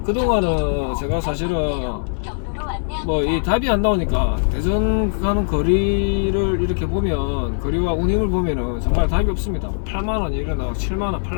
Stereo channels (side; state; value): right; silent; digital silence